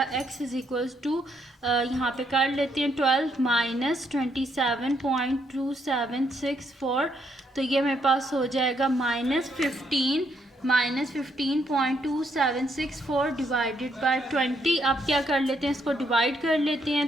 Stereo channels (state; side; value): normal; both; correlation 0.74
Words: x इज इक्वल्स टू यहाँ पे कर लेते हैं 12 माइनस 27.2764, तो ये मेरे पास हो जाएगा -15.276 डिवाइडेड बाय 20। अब क्या कर लेते हैं, इसको डिवाइड कर लेते